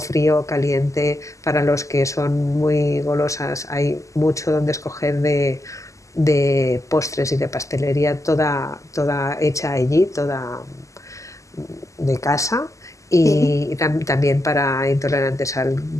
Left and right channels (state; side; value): late; right; 0.16 ms